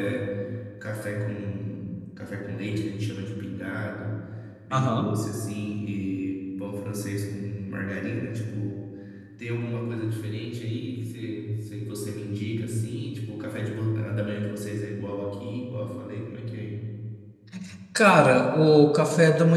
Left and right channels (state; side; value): identical; both; correlation 1.00